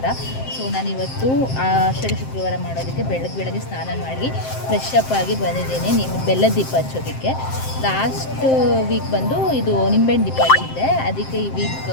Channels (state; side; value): late; right; 7.6 ms